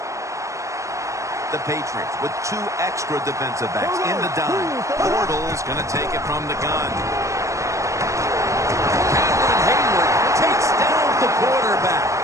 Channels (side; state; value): left; late; 0.15 ms